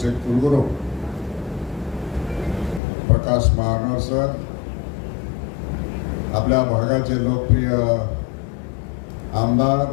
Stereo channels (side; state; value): right; drops out; at 2.8 s